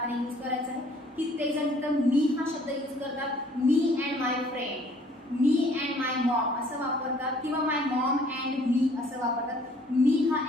यूज करायचं आहे. कित्येक जण तिथं मी हा शब्द यूज करतात, मी अँड माय फ्रेंड, मी अँड माय मॉम असं वापरतात किंवा माय मॉम अँड मी असं वापरतात. मी हा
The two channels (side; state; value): both; normal; correlation 0.58